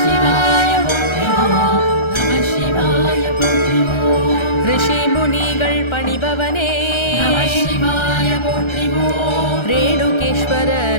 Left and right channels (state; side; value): late; right; 1.3 ms